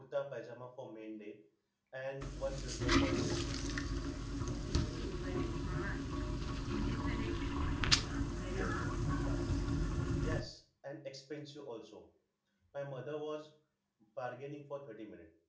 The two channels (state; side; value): identical; both; correlation 1.00